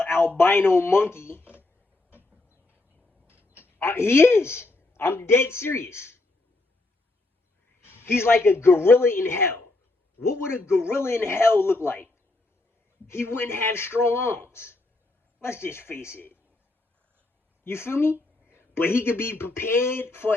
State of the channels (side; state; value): right; quieter; 3.0 dB